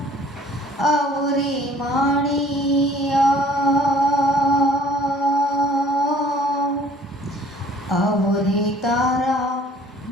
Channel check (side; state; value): both; normal; correlation 0.55